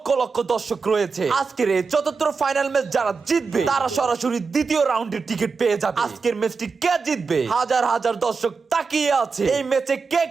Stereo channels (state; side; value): quieter; left; 4.8 dB